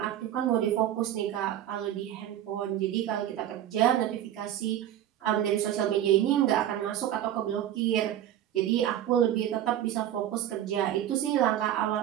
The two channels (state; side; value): quieter; left; 11.6 dB